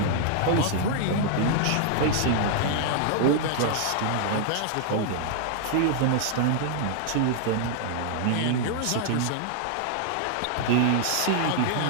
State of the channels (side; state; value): both; different; correlation 0.00